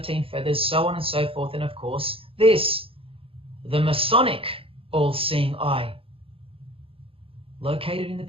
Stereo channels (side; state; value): left; late; 0.27 ms